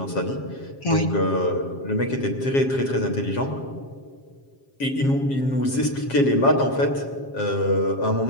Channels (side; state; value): right; late; 7.4 ms